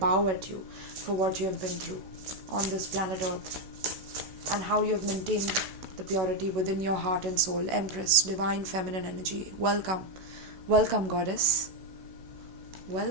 at you for what you have been through on this planet Earth, and how you have maintained the purity within your heart and soul. Empress, divine feminine energy. Welcome. Welcome, goddess.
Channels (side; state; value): left; late; 16 ms